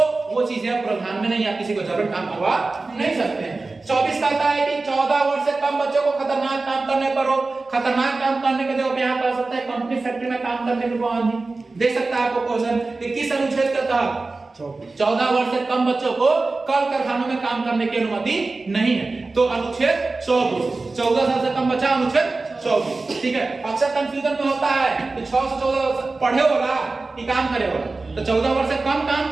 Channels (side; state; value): left; quieter; 3.5 dB